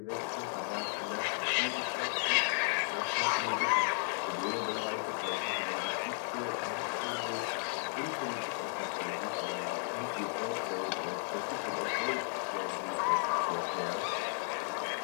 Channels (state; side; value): silent; right; 55 dB below the other